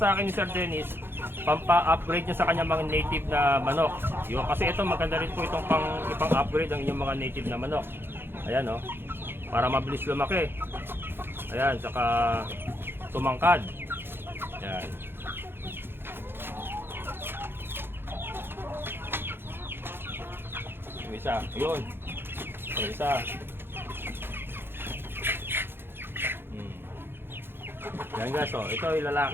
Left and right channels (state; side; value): late; left; 0.10 ms